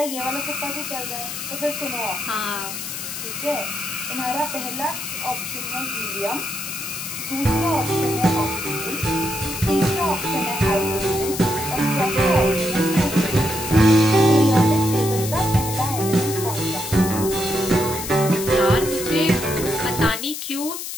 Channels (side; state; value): left; noise; hiss, 7 dB below the sound